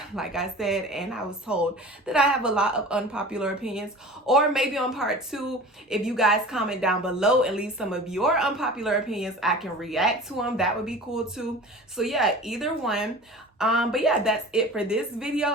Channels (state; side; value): normal; both; correlation 0.38